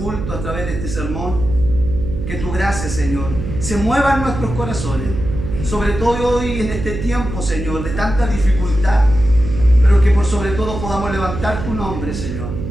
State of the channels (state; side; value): noise; right; hum, 6 dB below the sound